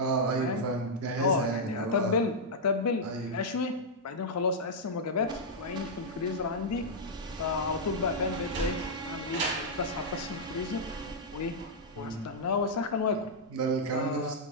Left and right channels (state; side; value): normal; both; correlation -0.06